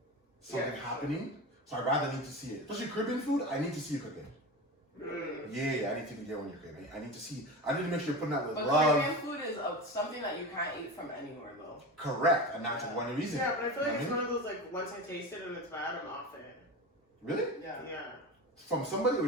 something happening. So I rather need to see it. Especially Caribbean food, I need to see you cooking. Yeah, I need to get when you're cooking. I need to see. I need to make sure you're putting that with But love. Caribbean food is something that you can't eat from anywhere though. Correct, and that's one reason. Yeah, but I feel like You it's know one of those like once I taste it and it's bad, I'm off it. Really? Yeah. Yeah, From somebody or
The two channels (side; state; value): both; normal; correlation 0.27